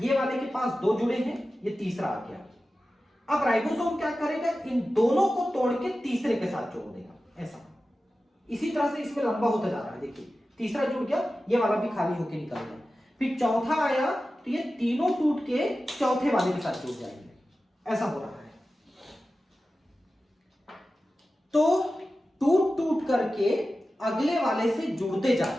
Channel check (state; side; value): normal; both; correlation 0.94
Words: वाले के पास 2 जुड़े हैं, ये तीसरा आ गया। अब राइबोसोम क्या करेगा, इन दोनों को तोड़ के तीसरे के साथ जोड़ देगा, ऐसा। इसी तरह से इसमें लंबा होता जा रहा है, देखिए तीसरा जुड़ गया, ये वाला भी खाली होके निकल गया। फिर चौथा आया, तो ये तीनों टूट के चौथे वाले के साथ जुड़ जाएंगे, ऐसा हो रहा है। तो टूट टूट करके अगले वाले से जुड़ते